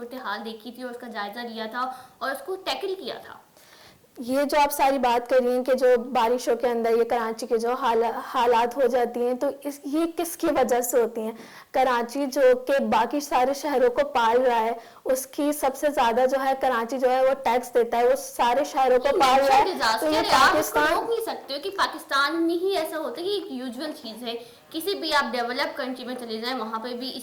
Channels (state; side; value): identical; both; correlation 1.00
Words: دیکھی تھی اور اس کا جائزہ لیا تھا اور اس کو ٹیکل کیا تھا. یہ جو آپ ساری بات کر رہی ہیں کہ جو بارشوں کے اندر یہ کراچی کے جو حالات ہو جاتی ہیں, تو یہ کس کی وجہ سے ہوتی ہیں؟ کراچی جو کہ باقی سارے شہروں کو پال رہا ہے, اس کی سب سے زیادہ جو ہے کراچی جو ہے وہ ٹیکس دیتا ہے, وہ سارے شہروں کو پال رہا ہے. تو یہ پاکستان روک نہیں سکتے ہو کہ پاکستان میں ہی ایسا ہوتا ہے کہ ایک یوزول چیز ہے. کسی بھی آپ ڈیولپ کنٹری میں چلے جائیں, وہاں پہ بھی